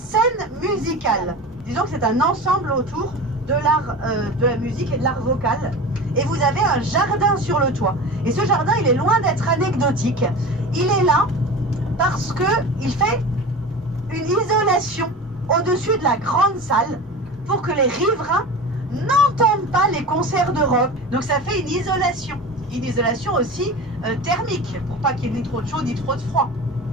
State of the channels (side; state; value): both; normal; correlation 0.32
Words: musicale, disons que c'est un ensemble autour de l'art de la musique et de l'art vocal. Et vous avez un jardin sur le toit. Et ce jardin, il est loin d'être anecdotique. Il est là parce qu'il fait une isolation au-dessus de la grande salle pour que les riverains n'entendent pas les concerts de rock. Donc ça fait une isolation. Une isolation aussi thermique, pour pas qu'il y ait ni trop de chaud ni trop de froid.